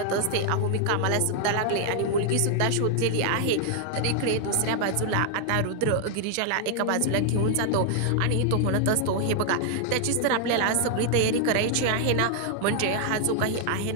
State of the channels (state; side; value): different; both; correlation 0.00